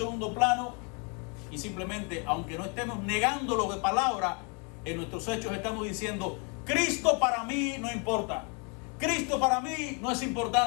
plano y simplemente, aunque no estemos negándolo de palabra, en nuestros hechos estamos diciendo: Cristo para mí no importa. Cristo para mí no es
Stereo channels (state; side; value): quieter; right; 35.1 dB